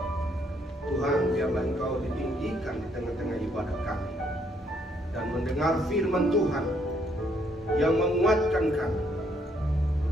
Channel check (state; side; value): normal; both; correlation 0.70